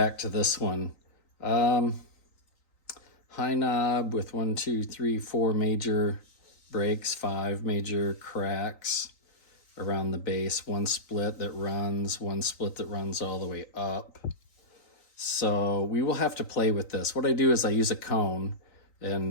to this one. High knob with 1, 2, 3, 4 major breaks, 5 major cracks around the base, 1 split that runs, 1 split that runs all the way up. So we will have to play with this. What I do is I use a cone,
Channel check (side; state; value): right; late; 3.9 ms